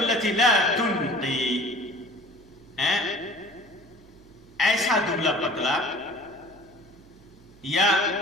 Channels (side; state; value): right; noise; hum, 26 dB below the sound